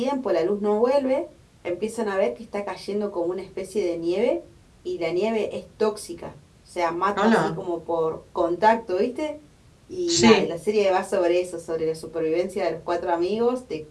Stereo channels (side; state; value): both; identical; correlation 1.00